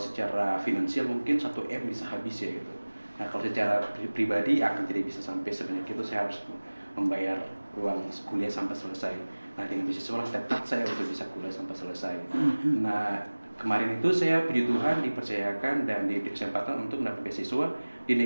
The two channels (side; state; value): both; inverted; correlation -1.00